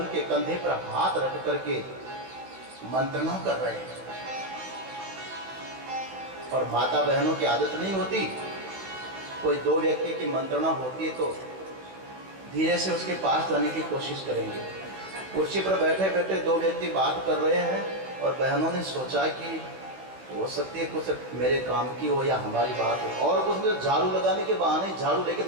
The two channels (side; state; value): left; late; 16 ms